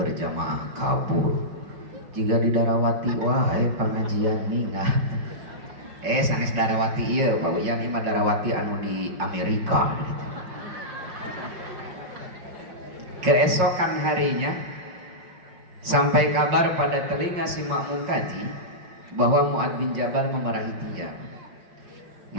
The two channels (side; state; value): left; late; 5.5 ms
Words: kabur. Jika di Darawati, wahai pengajian minggat. Sanes Darawati iya, Pak Uyan, ima Darawati anu di Amerika. Keesokan harinya sampai kabar pada telinga si makmum tadi bahwa Mu'ad bin Jabal memarahi dia.